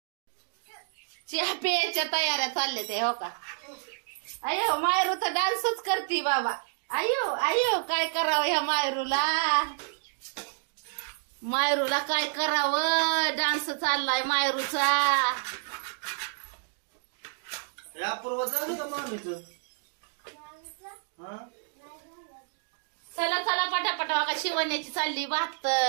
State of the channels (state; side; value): silent; left; digital silence